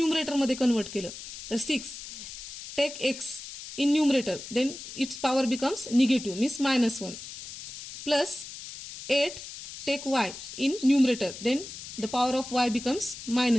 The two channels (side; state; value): left; noise; hiss, 11 dB below the sound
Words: मध्ये कन्वर्ट केलं तर 6 take x in numerator then its power becomes negative means -1 plus 8 take y in numerator then the power of y becomes